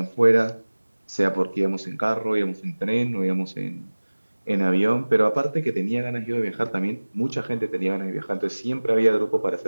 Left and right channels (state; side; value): inverted; both; correlation -1.00